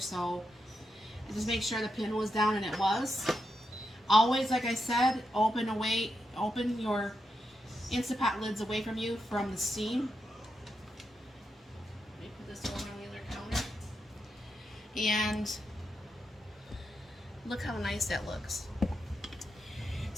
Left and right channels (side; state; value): both; normal; correlation 0.85